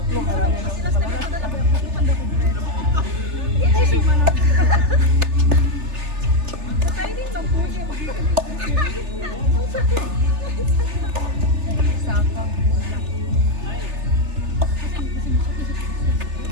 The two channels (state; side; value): late; left; 3.4 ms